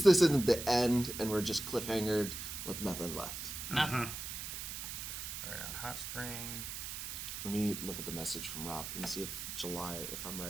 this isn't the end, and we're just cliffhangered with nothing left. Nothing. All right, on hot spring. Let me look at the message from Rob and see if I'm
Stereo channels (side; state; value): right; noise; hiss, 6 dB below the sound